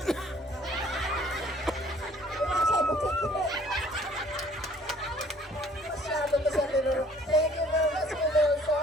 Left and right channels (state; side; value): normal; both; correlation 0.56